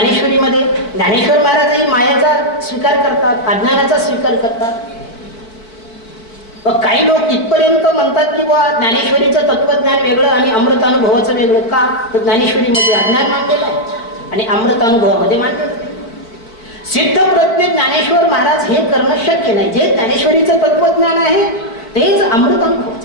ज्ञानेश्वर महाराजही मायाचा स्वीकार करतात, अज्ञानाचा स्वीकार करतात. काही लोक इथपर्यंत म्हणतात की ज्ञानेश्वरीचं तत्वज्ञान वेगळं आणि अमृतानुभवाचं वेगळं. का, तर ज्ञानेश्वरीमध्ये अज्ञान मांडलेलं आहे आणि अमृतानुभवामध्ये मांडलेलं आहे. सिद्ध प्रज्ञ ज्ञानेश्वर महाराज हे करणं शक्य नाही. जे ज्ञानेश्वरीचं तत्वज्ञान आहे तेच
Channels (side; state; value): right; late; 4.5 ms